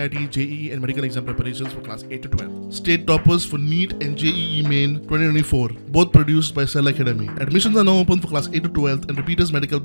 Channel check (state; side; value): inverted; both; correlation -1.00